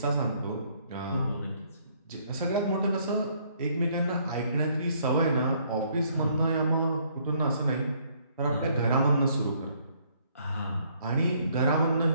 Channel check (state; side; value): inverted; both; correlation -0.66